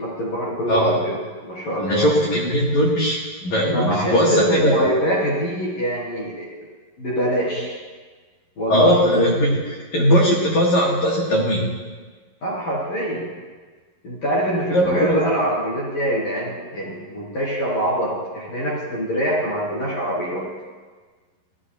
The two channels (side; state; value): right; late; 11 ms